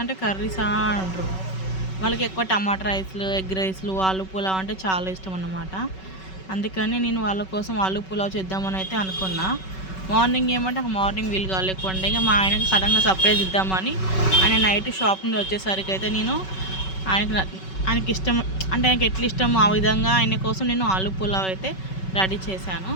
అంటే కర్రీసా అంటారు. వాళ్ళకి ఎక్కువ టమాటా రైస్లు, ఎగ్ రైస్లు, ఆలు పులావ్ అంటే చాలా ఇష్టం అన్నమాట. అందుకని నేను వాళ్ళ కోసం ఆలు పులావ్ చేద్దామని అయితే అనుకున్నా. మార్నింగ్ ఏమంటే మార్నింగ్ వీలు కాలేకుండా ఇక మా ఆయనకి సడన్గా సర్ప్రైజ్ ఇద్దామని ఆయన నైట్ షాప్ నుండి వచ్చేసరికి అయితే నేను ఆయనకి ఇష్టం అంటే ఆయనకి ఎట్లా ఇష్టమో ఆ విధంగా ఆయన కోసం నేను ఆలు పులావ్ అయితే రెడీ చేశాను.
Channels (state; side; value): late; right; 5.3 ms